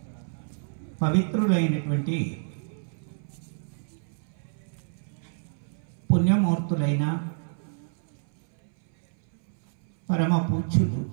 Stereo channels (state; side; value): silent; left; 59 dB below the other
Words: పవిత్రులైనటువంటి పుణ్యమూర్తులైన పరమ పూజ్యులు